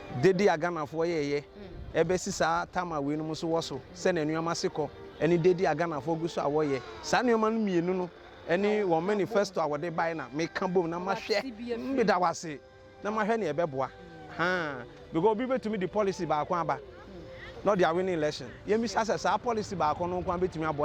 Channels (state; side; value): identical; both; correlation 1.00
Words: dedi aganafo yeye ebe sisa tama we no mo so woso se ne nneoma sekọ eni dedi aganafo guso awoye sa nneoma no mienu no eni wo manifesto awode bai na me kan bom na ma hwe me da wase na ma hwe ne ebeboa ha because obi betumi the policy ba akwa aba not their winning election yemi access our policy ba akwa no kwa betumi